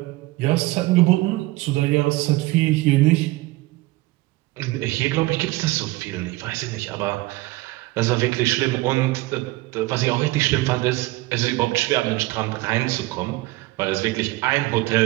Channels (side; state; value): left; quieter; 20.2 dB